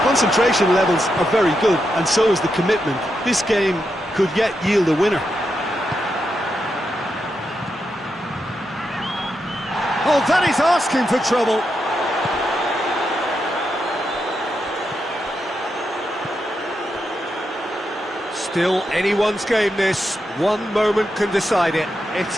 Concentration levels are very good, and so is the commitment. This game could yet yield a winner. Oh, that is asking for trouble. Still anyone's game, this. One moment can decide it. It's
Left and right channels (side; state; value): both; normal; correlation 0.85